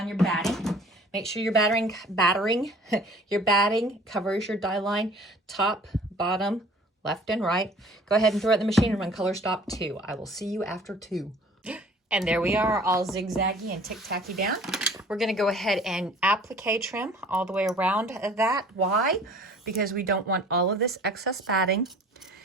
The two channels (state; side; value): normal; both; correlation 0.50